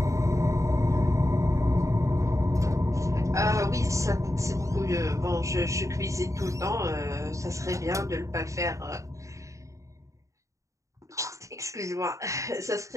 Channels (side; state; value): left; late; 0.15 ms